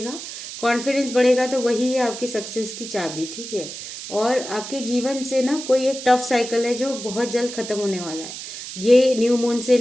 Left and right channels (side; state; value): right; noise; hiss, 10 dB below the sound